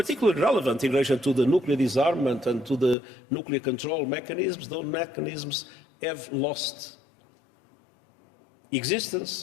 relevant in relation to the nuclear disarmament and to the nuclear control mechanisms, those mechanisms have lost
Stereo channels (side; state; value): right; drops out; at 3.0 s